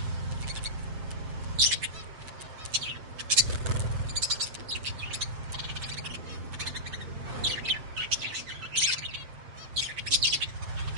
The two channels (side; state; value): left; late; 8.0 ms